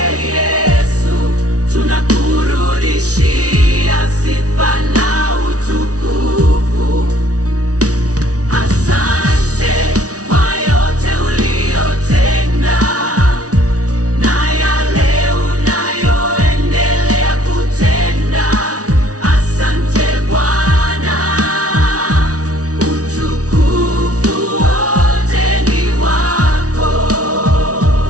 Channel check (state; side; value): late; left; 0.67 ms